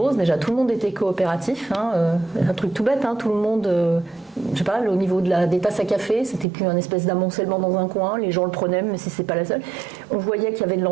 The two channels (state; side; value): drops out; left; at 6.5 s